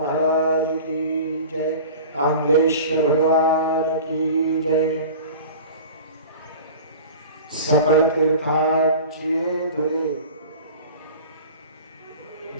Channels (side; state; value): both; inverted; correlation -0.38